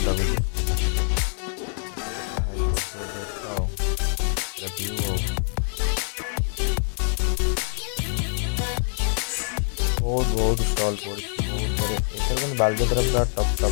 बहुत बहुत स्टल पड़ी बहुत बड़े एथर बालजात्रा पूरा टप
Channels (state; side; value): silent; right; digital silence